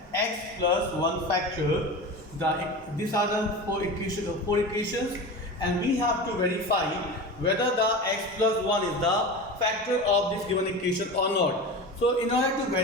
x plus 1 factor. These are the four equations and we have to verify whether the x plus 1 is the factor of this given equation or not. So in order to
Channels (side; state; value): both; normal; correlation 0.29